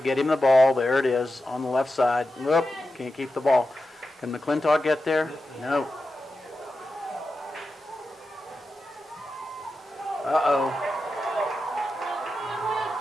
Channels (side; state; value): both; normal; correlation 0.91